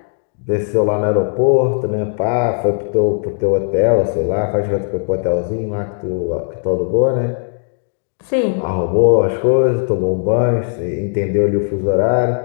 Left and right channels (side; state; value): right; silent; digital silence